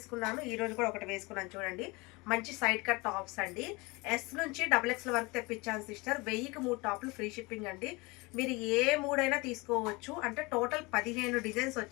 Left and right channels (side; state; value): right; quieter; 25.2 dB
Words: ఈ రోజు కూడా ఒకటి వేసుకున్నాను. చూడండి, మంచి సైడ్ కట్ టాప్స్ అండి. ఎస్ నుంచి డబుల్ ఎక్స్ఎల్ వరకు తెప్పించాను సిస్టర్. 1000కి 3 టాప్లు ఫ్రీ షిప్పింగ్ అండి. మీరు ఏ మూడైనా తీసుకోవచ్చు. అంటే టోటల్ 15 డిజైన్స్